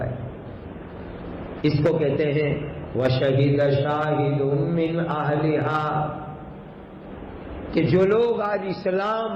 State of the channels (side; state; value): both; identical; correlation 1.00